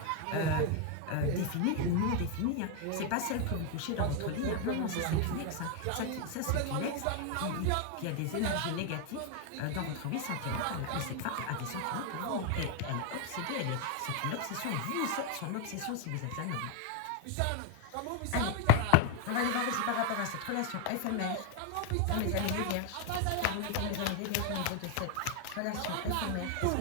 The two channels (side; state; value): both; different; correlation 0.01